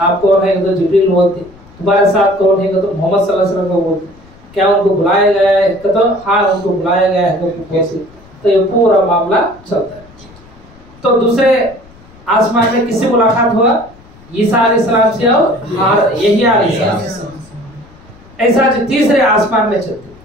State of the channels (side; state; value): left; noise; rumble, 24 dB below the sound